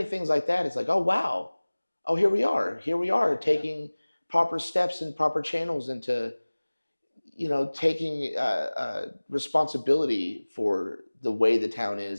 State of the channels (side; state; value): both; inverted; correlation -1.00